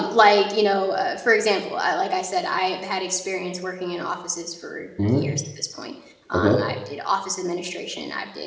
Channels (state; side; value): identical; both; correlation 1.00